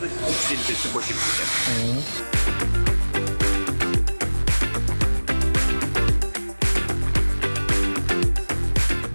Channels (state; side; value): inverted; both; correlation -1.00